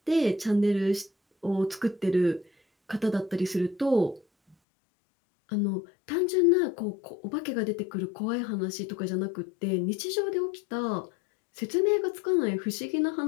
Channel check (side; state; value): right; drops out; at 4.5 s